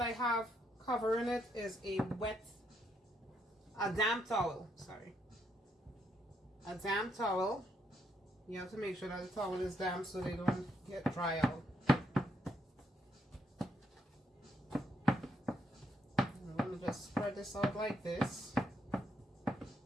have covering it is a damp towel, a damp towel. You have to make sure that the towel is damp so they don't get dry out. I'm going to just spread this out like this.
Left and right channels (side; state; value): both; normal; correlation 0.76